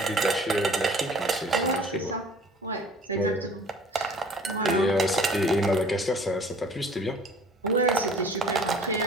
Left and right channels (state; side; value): normal; both; correlation 0.49